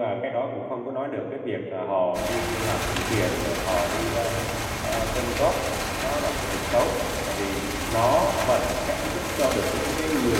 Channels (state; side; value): identical; both; correlation 1.00